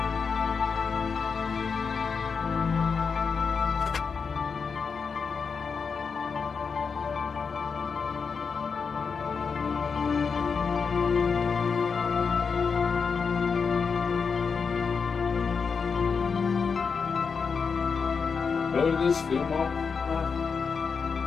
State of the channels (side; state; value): right; quieter; 5.6 dB